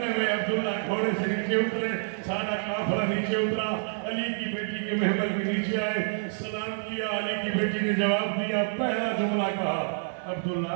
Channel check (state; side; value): silent; left; digital silence